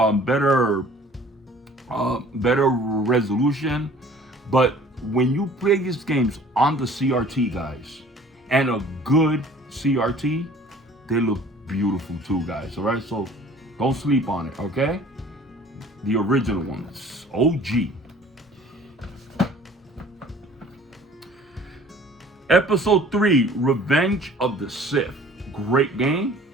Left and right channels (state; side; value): normal; both; correlation 0.50